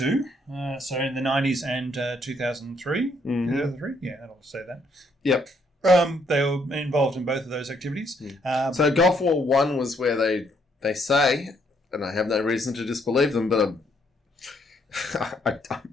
so in the 90s and 2003. 2003, yeah, I'll say that. Yep. They were involved in both of those activities. So Gulf War 1 was where they say, and I have no reason to disbelieve them, but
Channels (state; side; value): normal; both; correlation 0.71